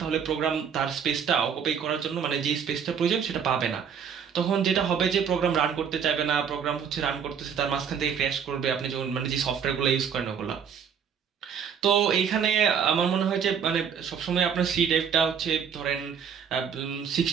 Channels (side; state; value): left; quieter; 7.3 dB